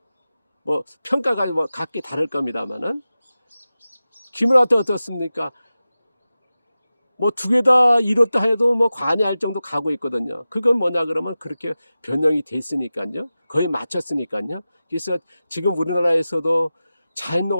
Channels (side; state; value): both; inverted; correlation -0.95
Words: 뭐 평가가 뭐 각기 다를 겁니다만은 기무라도 어떻습니까? 뭐 두 개 다 이뤘다 해도 뭐 관여할 정도 가고 있거든요. 그건 뭐냐 그러면 그렇게 변형이 됐으니까요. 거의 맞췄으니까요. 그래서 지금 우리나라에서도